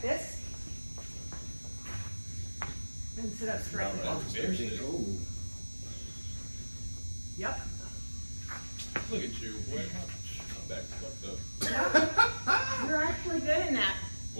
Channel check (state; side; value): inverted; both; correlation -1.00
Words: And sit up straight. Oh. Yep. Look at you, boy. My back's fucked up. Yep. You're actually good in that.